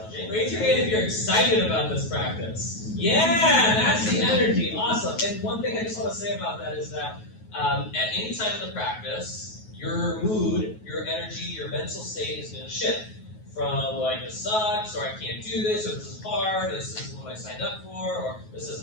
Raise your hand if you're excited about this practice. Yeah, that's the energy. Awesome. And one thing I just want to say about that is that at any time in the practice, your mood, your energy, your mental state is going to shift. From like, this sucks, or I can't do this, or this is hard, or this isn't what I signed up for, or this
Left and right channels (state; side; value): late; right; 9.3 ms